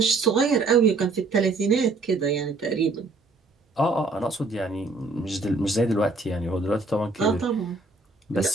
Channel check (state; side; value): quieter; left; 3.5 dB